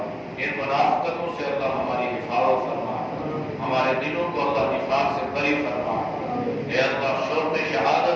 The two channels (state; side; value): identical; both; correlation 1.00